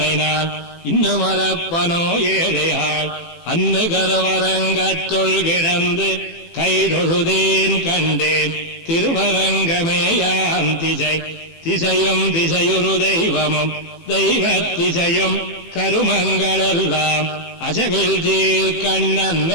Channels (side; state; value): right; late; 18 ms